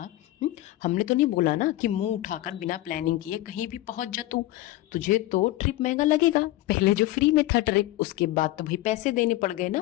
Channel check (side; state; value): right; quieter; 16.4 dB